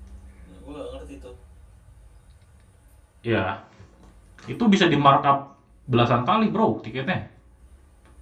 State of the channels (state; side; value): identical; both; correlation 1.00